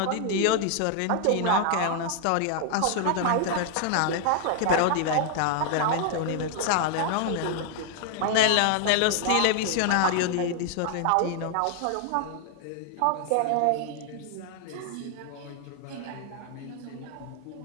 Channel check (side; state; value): both; different; correlation 0.00